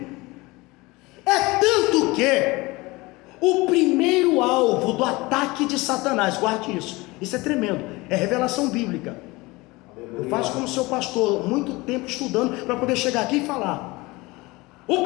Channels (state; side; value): quieter; right; 22.6 dB